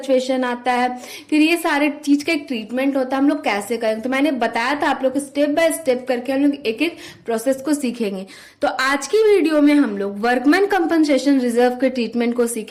आता है, फिर ये सारे चीज का एक ट्रीटमेंट होता है। हम लोग कैसे करेंगे तो मैंने बताया था आप लोग स्टेप बाय स्टेप करके हम लोग एक एक प्रोसेस को सीखेंगे। तो आज की वीडियो में हम लोग वर्कमैन कंपनसेशन रिजर्व के ट्रीटमेंट को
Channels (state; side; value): identical; both; correlation 1.00